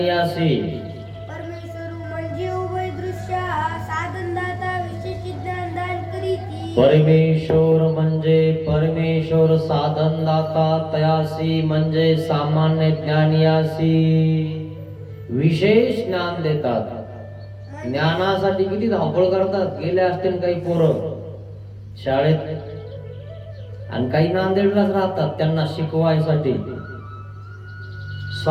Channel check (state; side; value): identical; both; correlation 1.00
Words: परमेश्वर म्हणजे उभय दृश्य साधनदाता विशेष ज्ञान दान करीती. परमेश्वर म्हणजे परमेश्वर साधनदाता तयासी म्हणजे सामान्य ज्ञानियासी विशेष ज्ञान देतात. ज्ञानासाठी किती धावपळ करतात. गेले असतील काही पोरं शाळेत आणि काही नांदेडलाच राहतात त्यांना शिकवायसाठी